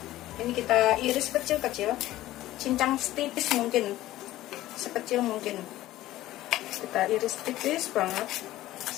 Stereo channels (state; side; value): quieter; right; 15.4 dB